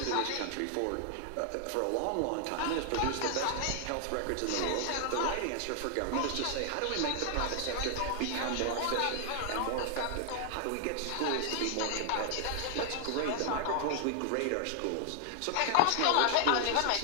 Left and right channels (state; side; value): different; both; correlation 0.00